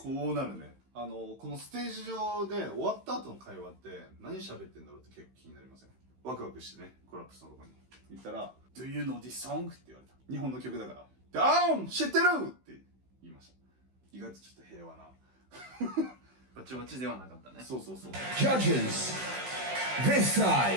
こうなるね。このステージ上で終わった後の会話って何喋ってんだろうって結構気になりません？ワクワクしてね、コラップスのとこに行ったら Do you know this song? って言われた。日本の曲だからで、知ってるって言いました。意外とちょっと平和なバチバチではなかったね。そうそうそう。 Judges, this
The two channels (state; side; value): late; left; 16 ms